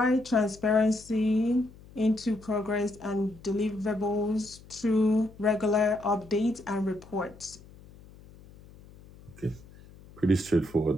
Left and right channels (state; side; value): noise; left; hum, 22 dB below the sound